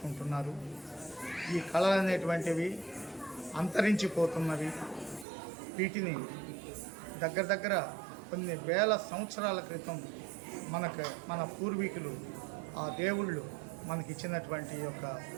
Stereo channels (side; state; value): left; drops out; at 5.2 s